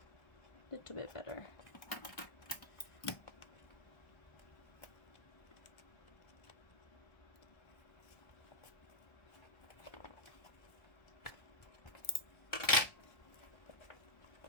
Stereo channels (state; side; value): late; right; 1.3 ms